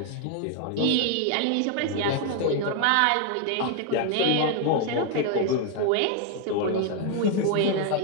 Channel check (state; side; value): different; both; correlation 0.01